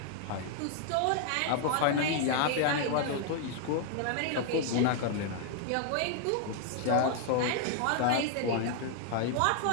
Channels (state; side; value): different; both; correlation 0.00